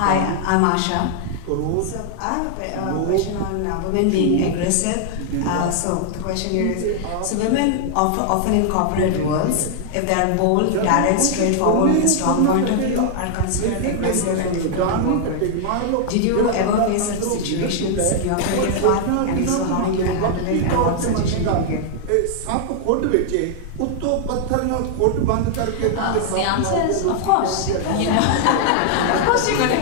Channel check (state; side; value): different; both; correlation 0.00